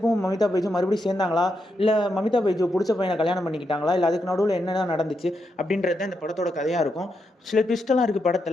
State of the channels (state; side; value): normal; both; correlation 0.83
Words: மமிதா பைஜும் மறுபடியும் சேர்ந்தாங்களா, இல்லை மமிதா பைஜு பிடிச்ச பையனை கல்யாணம் பண்ணிக்கிட்டாங்களா, இல்லை அதுக்கு நடுவில் என்னென்ன நடந்துச்சு அப்படின்றது தான் இந்த படத்தோட கதையாக இருக்கும். சில ட்விஸ்டெல்லாம் இருக்குது